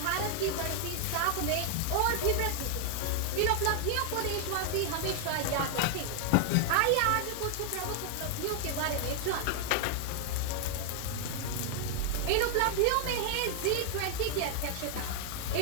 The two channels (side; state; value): both; different; correlation 0.00